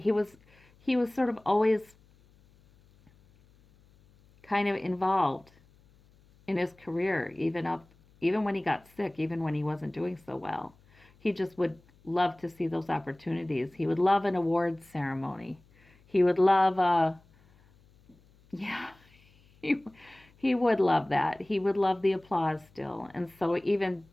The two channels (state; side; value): noise; left; hum, 30 dB below the sound